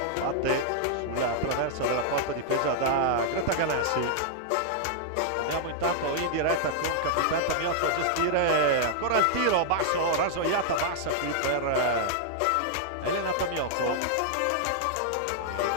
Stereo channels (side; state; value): both; different; correlation -0.01